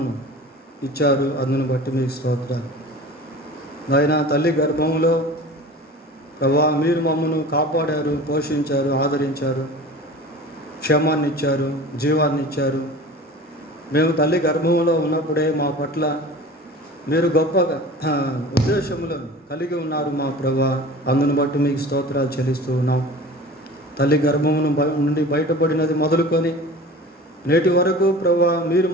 ఇచ్చారు, అందును బట్టి మీకు స్తోత్రాలు. ఆయన తల్లి గర్భంలో ప్రభా మీరు మమ్మను కాపాడారు, పోషించారు, ఆదరించారు, క్షేమాన్ని ఇచ్చారు, జీవాన్ని ఇచ్చారు. మేము తల్లి గర్భంలో ఉన్నప్పుడే మా పట్ల మీరు గొప్ప ఉద్దేశములను కలిగి ఉన్నారు మా ప్రభా, అందును బట్టి మీకు స్తోత్రాలు చెల్లిస్తూ ఉన్నాం. తల్లి గర్భమును నుండి బయటపడినది మొదలుకొని నేటి వరకు ప్రభా మీరు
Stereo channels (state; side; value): normal; both; correlation 0.38